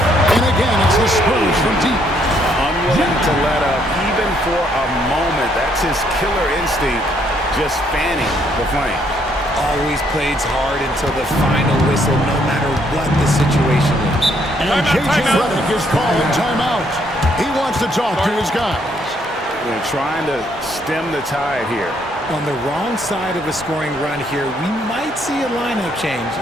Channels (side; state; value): both; normal; correlation 0.70